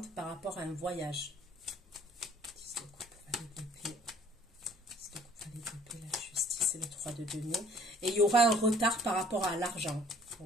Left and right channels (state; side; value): normal; both; correlation 0.55